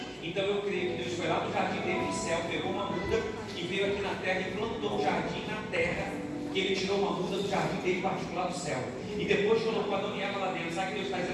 Então eu creio que Deus foi lá do jardim dele no céu, pegou uma muda e veio aqui na terra e plantou um jardim na terra, que Ele tirou uma muda do jardim dele particular do céu. E depois colocou Adão e Eva lá dentro. Sabe o que Deus está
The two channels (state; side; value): identical; both; correlation 1.00